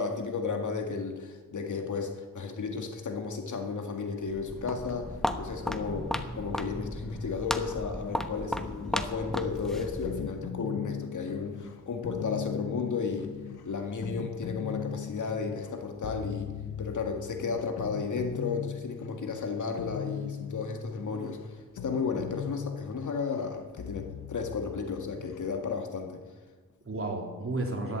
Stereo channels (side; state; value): right; quieter; 4.0 dB